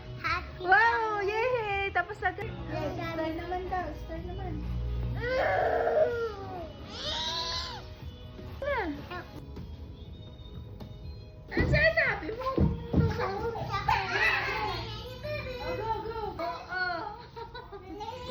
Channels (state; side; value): identical; both; correlation 1.00